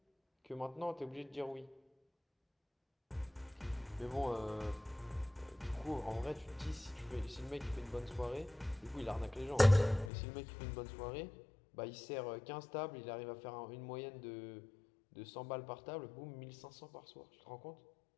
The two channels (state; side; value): drops out; right; at 10.1 s